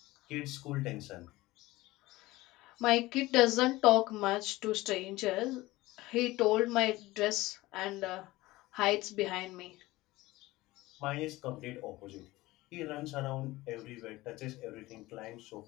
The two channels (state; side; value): quieter; right; 18.9 dB